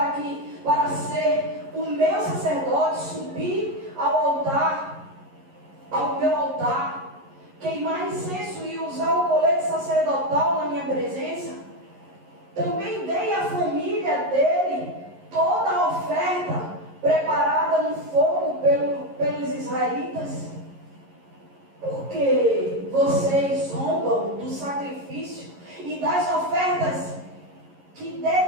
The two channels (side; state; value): left; late; 11 ms